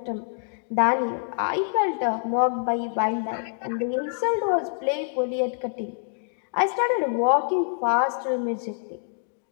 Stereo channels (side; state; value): right; silent; digital silence